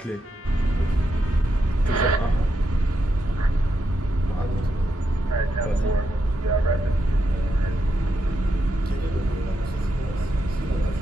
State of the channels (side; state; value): both; normal; correlation 0.83